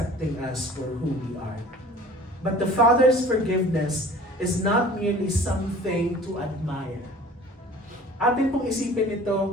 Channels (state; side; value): normal; both; correlation 0.46